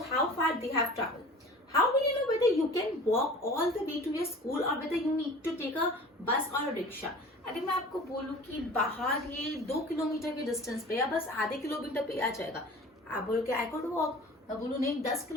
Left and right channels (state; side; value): normal; both; correlation 0.42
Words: how far they have traveled? How will you know whether you can walk all the way to your school or whether you need to take a bus or a rickshaw? अगर मैं आपको बोलूं कि बाहर ये 2 kilometre के distance पे या बस आधे किलोमीटर पे आ जाएगा, आप बोलोगे आई कुड वॉक, मैं बोलूं नहीं 10